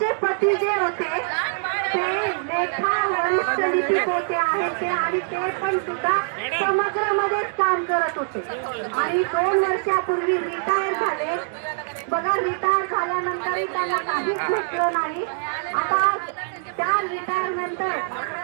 पती जे होते ते लेखा वरिष्ठ लिपिक आहेत ते, आणि ते पण सुद्धा समग्रमध्येच काम करत होते आणि 2 वर्षापूर्वी रिटायर झाले. बघा, रिटायर झाल्यानंतरही त्यांना काहीच भेटलं नाही. आता त्या रिटायरनंतर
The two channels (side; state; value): left; silent; digital silence